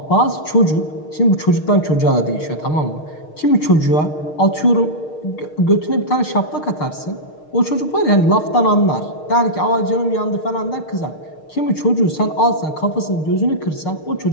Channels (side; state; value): right; late; 6.5 ms